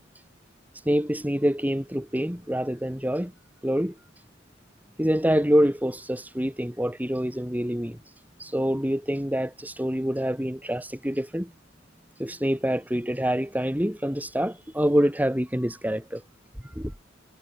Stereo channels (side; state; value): both; normal; correlation 0.94